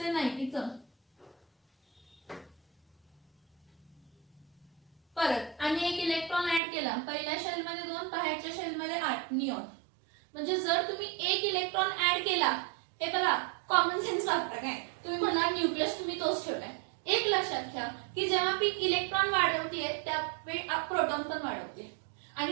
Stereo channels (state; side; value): drops out; left; at 6.6 s